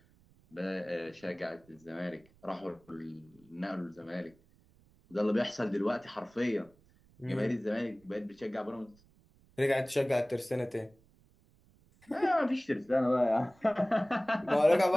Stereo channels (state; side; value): noise; right; rumble, 30 dB below the sound